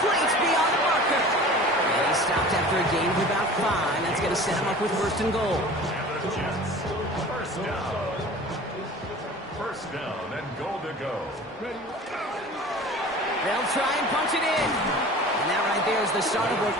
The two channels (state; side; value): normal; both; correlation 0.41